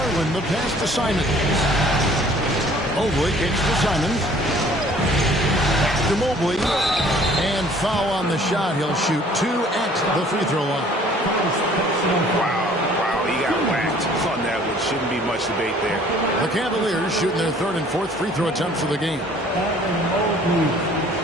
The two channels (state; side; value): normal; both; correlation 0.55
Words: the pass to Simons. Mobley kicks to Simons. Back to Mobley. And foul on the shot. He'll shoot 2 at the free throw line. Wow, he got whacked on that one. Shouldn't be much debate there. The Cavaliers shooting their 3rd and 4th free throw attempts of the game. Mobley,